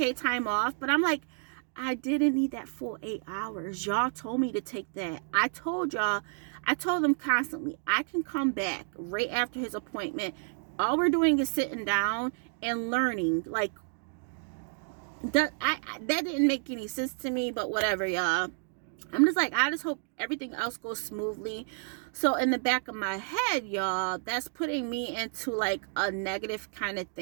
time off. But I'm like, I didn't need that full 8 hours. Y'all told me to take that. I told them constantly, I can come back right after his appointment, All we're doing is sitting down and learning. Like, that didn't make any sense to me, but whatever, y'all. I'm just like, I just hope everything else goes smoothly. So in the back of my head, y'all, that's putting me into like a negative kind of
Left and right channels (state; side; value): silent; left; 57 dB below the other